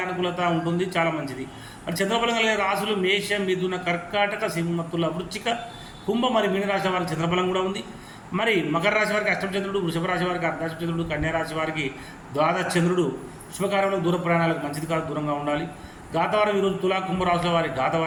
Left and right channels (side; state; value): both; identical; correlation 1.00